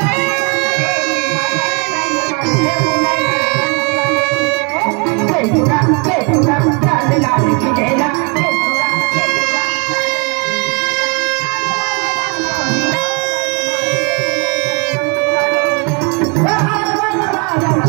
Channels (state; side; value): quieter; left; 34.1 dB